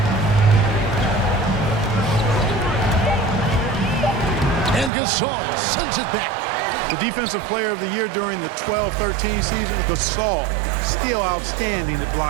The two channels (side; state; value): left; drops out; at 4.9 s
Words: Gasol sends it back. The Defensive Player of the Year during the 12-13 season, Gasol, still outstanding at